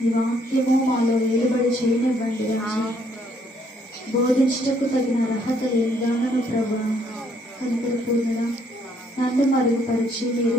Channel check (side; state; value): both; normal; correlation 0.68